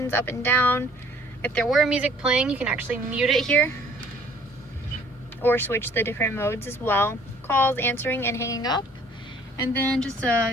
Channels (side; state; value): both; normal; correlation 0.57